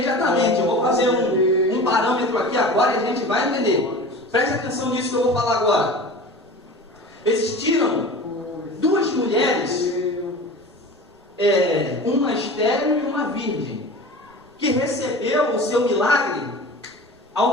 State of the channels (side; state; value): both; normal; correlation 0.36